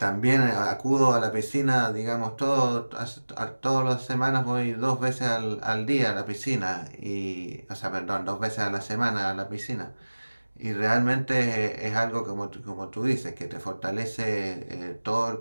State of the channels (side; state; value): both; inverted; correlation -1.00